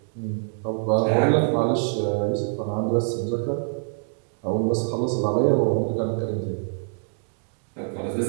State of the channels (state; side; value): silent; left; digital silence